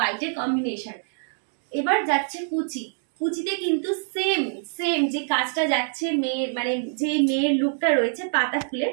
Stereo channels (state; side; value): silent; left; digital silence